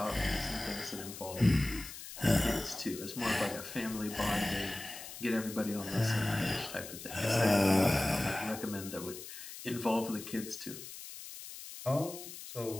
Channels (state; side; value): noise; left; hiss, 12 dB below the sound